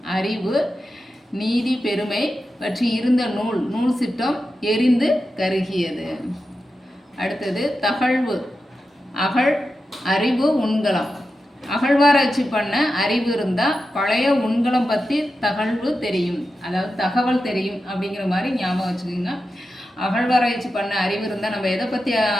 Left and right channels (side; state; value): both; normal; correlation 0.90